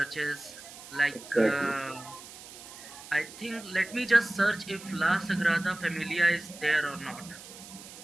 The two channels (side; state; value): right; noise; hiss, 16 dB below the sound